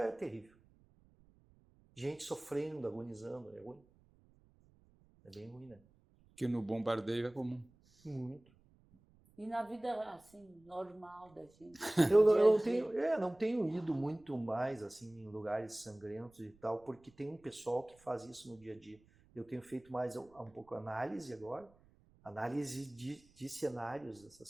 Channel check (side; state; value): right; noise; rumble, 29 dB below the sound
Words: terrível. Gente sofrendo, agonizando, é ruim. É bem ruim, né? Que no bombardeio é comum. Muito. E na vida, assim, normal da gente? Eu não tenho ido muito mais, assim, em lugares sangrentos e tal, porque tem um pessoal que faz isso no dia a dia. Eu tenho feito mais um pouco análise agora, análise de cenários, dessas